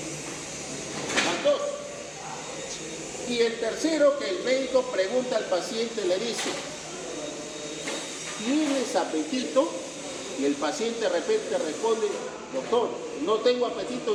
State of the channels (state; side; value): identical; both; correlation 1.00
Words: Van dos. Y el tercero, que el médico pregunta al paciente, le dice, ¿tienes apetito? Y el paciente de repente responde, doctor, no tengo